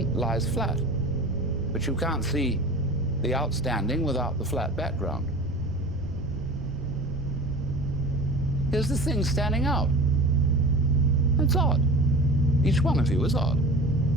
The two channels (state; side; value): noise; right; rumble, 10 dB below the sound